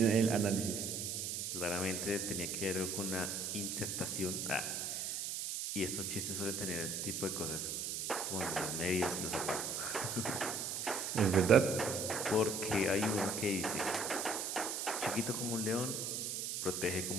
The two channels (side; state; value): right; noise; hiss, 2 dB below the sound